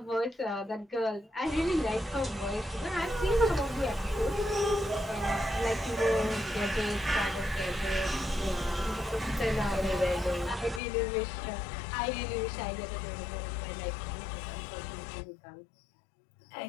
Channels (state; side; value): drops out; right; at 10.8 s